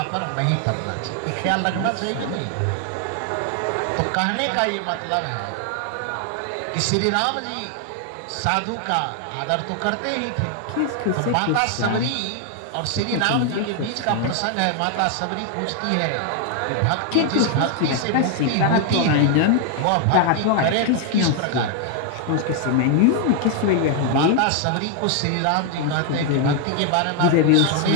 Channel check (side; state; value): both; different; correlation 0.00